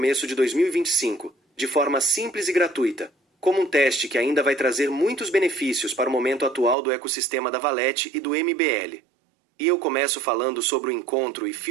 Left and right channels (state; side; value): drops out; left; at 6.8 s